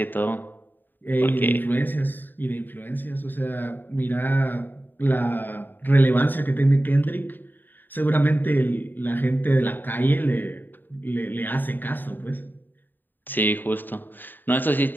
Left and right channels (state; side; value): late; right; 0.091 ms